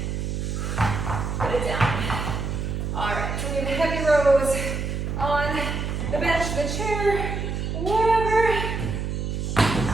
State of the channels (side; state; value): right; noise; hum, 3 dB below the sound